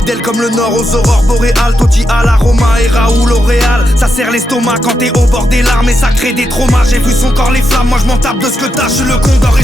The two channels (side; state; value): both; normal; correlation 0.84